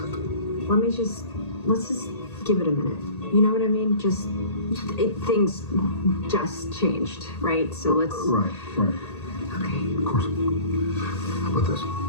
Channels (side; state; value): right; late; 1.8 ms